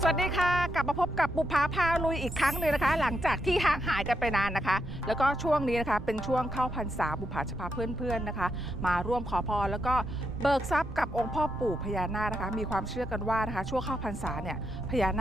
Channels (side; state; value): right; noise; rumble, 10 dB below the sound